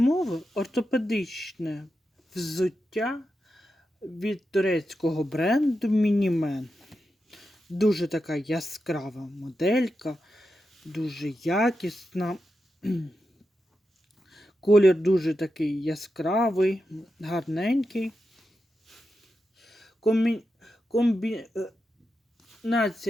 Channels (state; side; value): normal; both; correlation 0.89